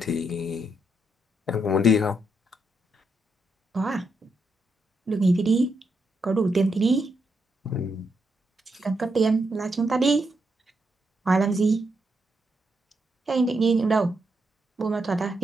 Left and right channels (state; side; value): normal; both; correlation 0.81